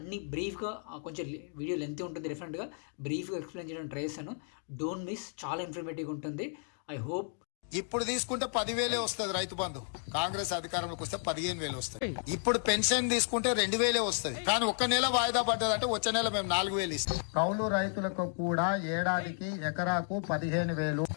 బ్రీఫ్‌గా కొంచెం వీడియో లెంతీ ఉంటుంది డెఫినెట్‌గా. బ్రీఫ్‌గా ఎక్స్‌ప్లెయిన్ చేయడానికి ట్రై చేశాను. డోంట్ మిస్, చాలా ఇన్ఫర్మేటివ్‌గా ఉంటుంది. I hope. ఇప్పుడు తీసుకుంటే 10,000 వస్తుంది రైతు బంధు. కాంగ్రెస్ అధికారంలోకి వస్తే 15,000 వస్తుంది. ఇప్పుడు పెన్షన్ తీసుకుంటే 2,000 వస్తుంది. కానీ ఒక్క నెల వాయిదా పడ్డదంటే వచ్చే నెల మేము 4,000 ఇస్తాం. కౌలు రైతులకు కూడా ఏడాదికి ఎకరాకు 15,000.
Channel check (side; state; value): right; silent; 56 dB below the other